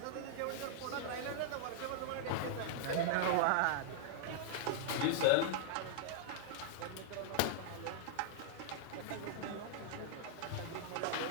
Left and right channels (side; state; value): both; different; correlation -0.01